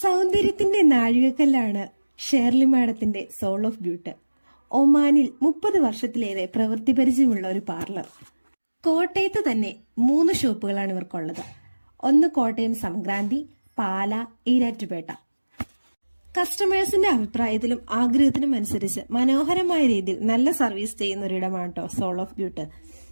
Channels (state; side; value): inverted; both; correlation -1.00